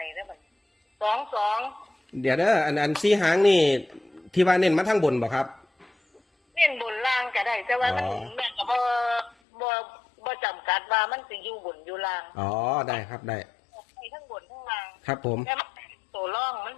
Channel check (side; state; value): right; drops out; at 9.3 s